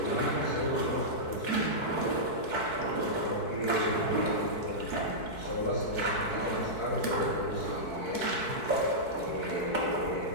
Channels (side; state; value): right; late; 4.6 ms